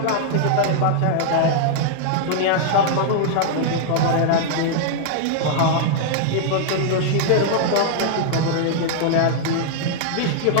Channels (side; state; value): both; different; correlation -0.01